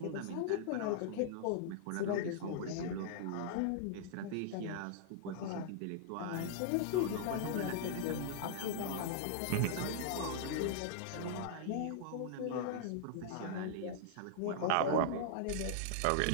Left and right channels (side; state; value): both; different; correlation -0.01